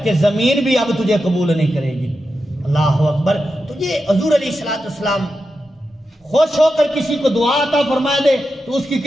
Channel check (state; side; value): normal; both; correlation 0.89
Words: کہ زمین بھی اب تجھے قبول نہیں کرے گی. اللہ اکبر. تو یہ حضور علیہ السلام خوش ہو کر کسی کو دعا عطا فرما دے تو اس کی